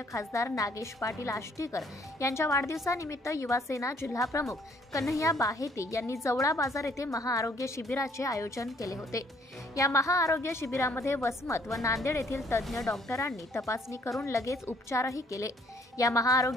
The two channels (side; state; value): both; normal; correlation 0.63